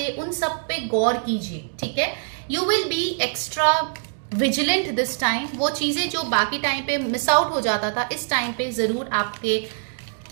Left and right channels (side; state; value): left; silent; digital silence